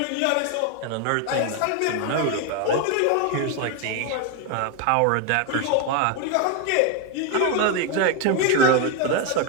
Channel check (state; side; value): different; both; correlation 0.01